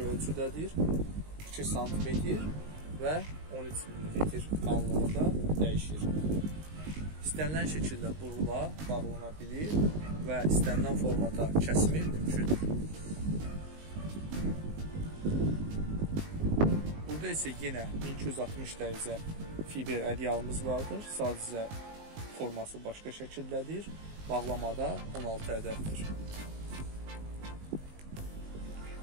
ölçüdədir, 2 sm və 13 mm qalınlığında dəyişir. İstənilən şəkildə burula, bağlana bilir və istənilən formata kəsimi mümkündür. Burada isə yenə 1260 dərəcə fiber ədyalımız vardır. Sadəcə forması başqa şəkildədir. Bağlamada 16 ədəddir.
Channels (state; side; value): late; left; 19 ms